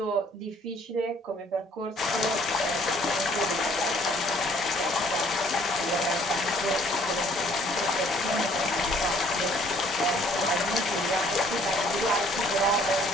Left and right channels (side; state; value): both; normal; correlation 0.60